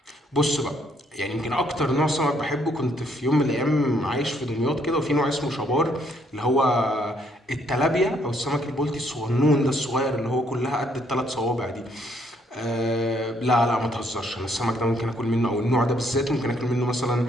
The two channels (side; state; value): both; normal; correlation 0.69